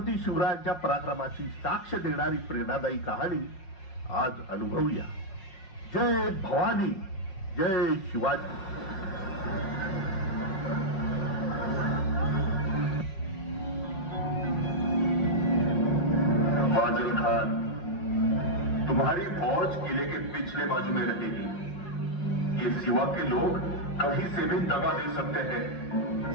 शिवरायांच्या पराक्रमाची साक्ष देणारी प्रेरणादायी कहाणी आज अनुभवूया। जय भवानी, जय शिवाजी। फाजिल खान, तुम्हारी फौज किले के पिछले बाजू में रहेगी। ये सिवा के लोग कहीं से भी दगा दे सकते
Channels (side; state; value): right; late; 5.5 ms